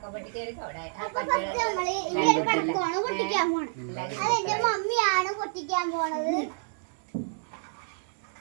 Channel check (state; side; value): silent; left; digital silence